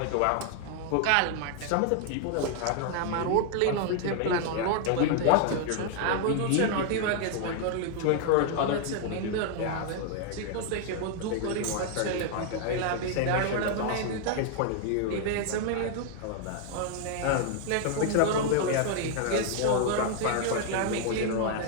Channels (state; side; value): different; both; correlation 0.00